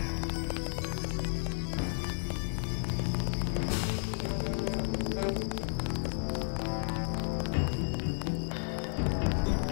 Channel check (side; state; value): right; silent; 56 dB below the other